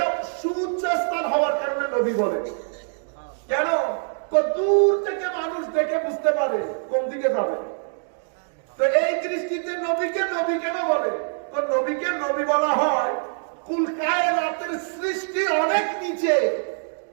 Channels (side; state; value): left; silent; digital silence